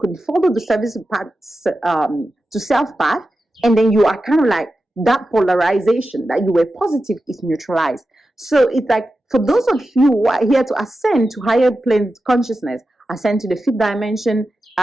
follow the service path to self path, and then you are kind of like that polarization that you were positive is neutralized. So it's like, for those of you who are here to ascend to higher plane consciousness, ascend to the fifth dimension,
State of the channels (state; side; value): normal; both; correlation 0.92